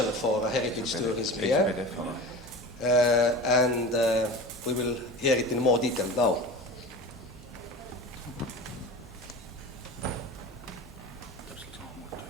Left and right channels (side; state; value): both; normal; correlation 0.33